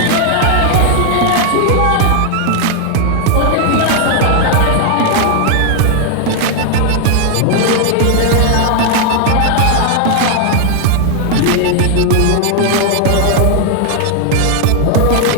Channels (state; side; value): different; both; correlation 0.00